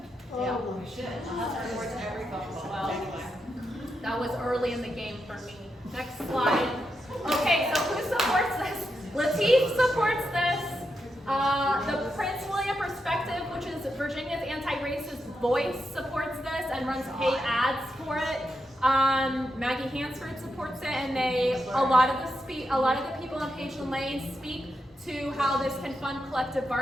Oh, my. Supports every phone call. Well, Anyway. that was early in the game for me. Next slide. Okay, so who supports this? Lateef supports this. The Prince William Perspective, which is Virginia's anti-racist voice, supports this and runs paid ads for it. Maggie Hansford supports it, and a lot of the people on Pageland Lane speak to how this can fund collective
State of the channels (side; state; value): both; normal; correlation 0.85